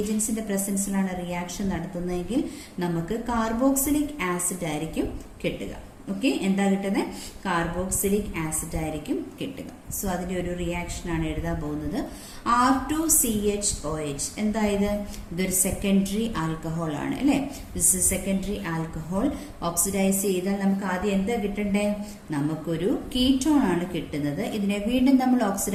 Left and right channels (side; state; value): both; identical; correlation 1.00